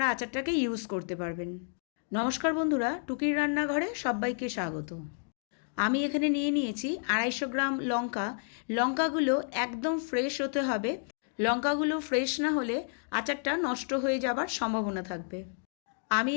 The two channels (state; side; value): silent; right; 57 dB below the other